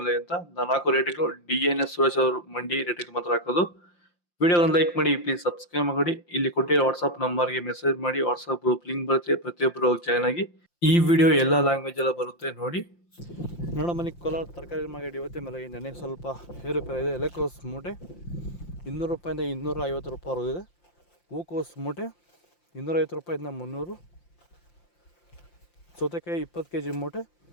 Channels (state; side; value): late; right; 5.8 ms